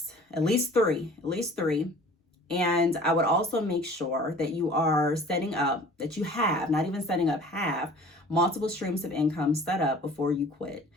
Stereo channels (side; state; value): both; normal; correlation 0.47